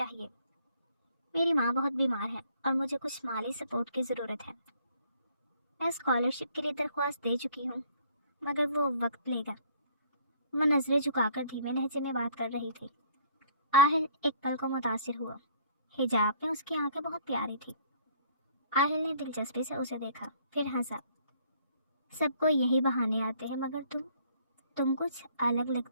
میری ماں بہت بیمار ہے اور مجھے کچھ مالی سپورٹ کی ضرورت ہے۔ میں اسکالرشپ کے لیے درخواست دے چکی ہوں، مگر وہ وقت لے گا۔ وہ نظریں جھکا کر دھیمے لہجے میں بات کر رہی تھی۔ آہل ایک پل کو متاثر ہوا۔ حجاب میں اس کی آنکھیں بہت پیاری تھی۔ آہل نے دلچسپی سے اسے دیکھا، پھر ہنسا۔ سب کو یہی بہانے آتے ہیں، مگر تم کچھ الگ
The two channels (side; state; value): both; inverted; correlation -0.59